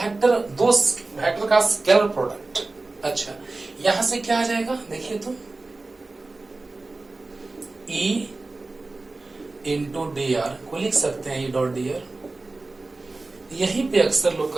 का स्केलर प्रोडक्ट. अच्छा, यहां से क्या आ जाएगा, देखिए तो E इंटू dr को लिख सकते हैं E.dr. यहीं पे अक्सर लोग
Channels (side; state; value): left; quieter; 3.3 dB